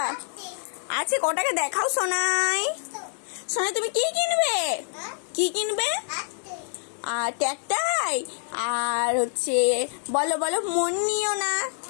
আছে? ক টাকা দেখাও সোনাই। সোনাই তুমি কি কিনবে? কি কিনবে? আর ট্যাকটাই আর হচ্ছে বলো বলো, মন নিও না।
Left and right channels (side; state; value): right; silent; digital silence